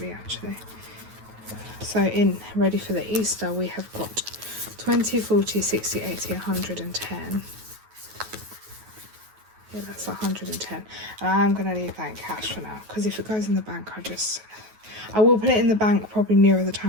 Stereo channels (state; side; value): late; left; 9.3 ms